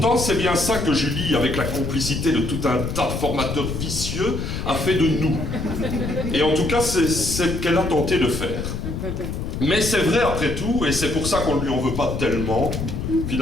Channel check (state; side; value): noise; left; rumble, 4 dB below the sound